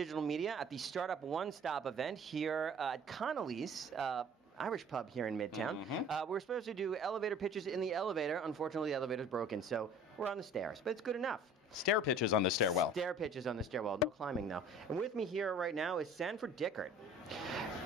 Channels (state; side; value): normal; both; correlation 0.48